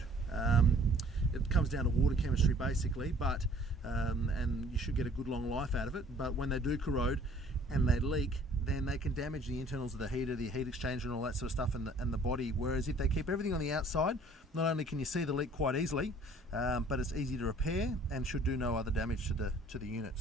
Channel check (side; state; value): both; normal; correlation 0.55